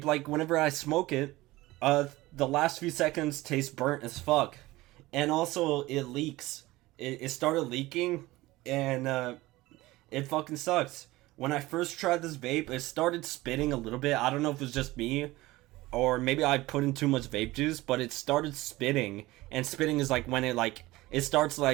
like, whenever I smoke it, the last few seconds taste burnt as fuck. And also, it leaks. It started leaking, and it fucking sucks. When I first tried this vape, it started spitting a little bit. I don't know if it was just me, or maybe I put in too much vape juice, but it started spitting. And spitting is like when it starts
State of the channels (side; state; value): left; quieter; 19.0 dB